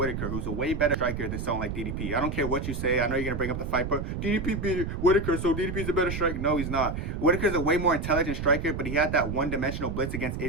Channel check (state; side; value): noise; right; rumble, 4 dB below the sound